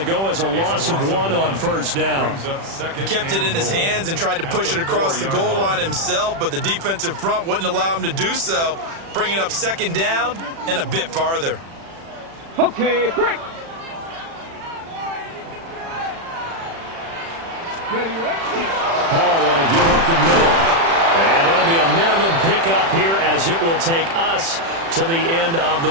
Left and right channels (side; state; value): left; late; 36 ms